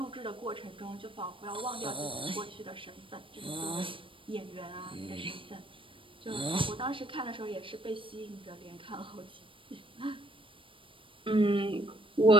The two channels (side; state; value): left; late; 0.25 ms